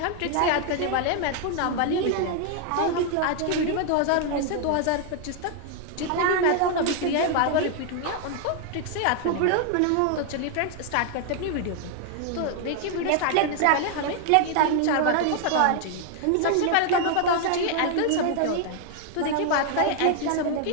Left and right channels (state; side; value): different; both; correlation 0.00